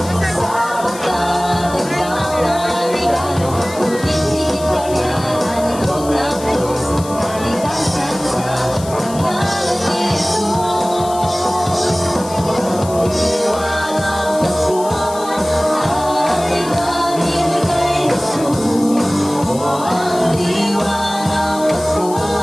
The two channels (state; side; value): noise; left; hiss, 15 dB below the sound